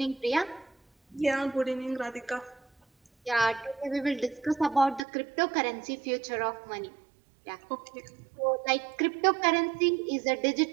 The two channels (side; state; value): left; drops out; at 5.0 s